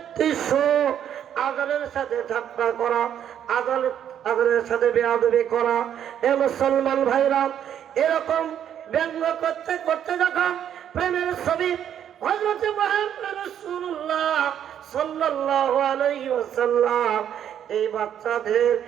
আযানের সাথে ঠাট্টা করা, আযানের সাথে বেয়াদবি করা। এ মুসলমান ভাইরা, এরকম ব্যঙ্গ করতে করতে যখন প্রেমের ছবি হযরত মুহাম্মদ রাসূলুল্লাহ সাল্লাল্লাহু আলাইহি ওয়াসাল্লাম এই বাচ্চাদের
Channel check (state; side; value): quieter; left; 9.7 dB